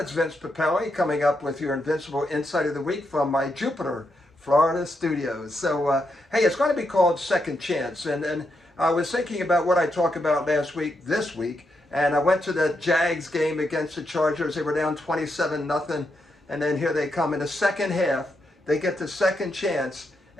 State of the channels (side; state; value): both; normal; correlation 0.82